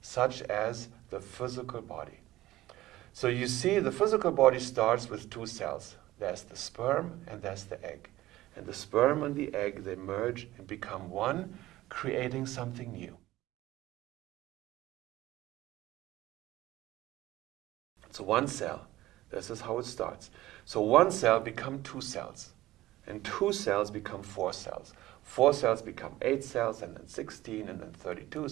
such as the physical body. So you see, the physical body starts with 2 cells. There's the sperm and there's the egg. And the sperm and the egg, they merge and become one, creating something new. So one cell, this is how it starts. So one cell becomes 2 cells. And 2 cells become 4 cells. 4 cells become 8 cells, and then 16, and then 32,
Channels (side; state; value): left; quieter; 16.4 dB